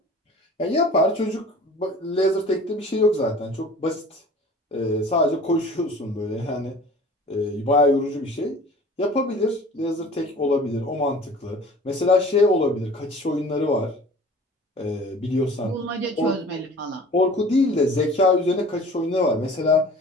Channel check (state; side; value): normal; both; correlation 0.45